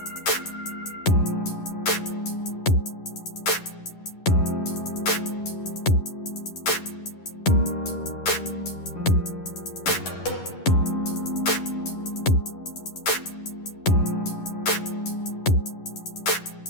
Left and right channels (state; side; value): late; right; 11 ms